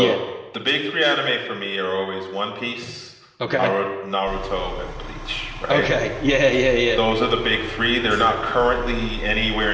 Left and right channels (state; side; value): identical; both; correlation 1.00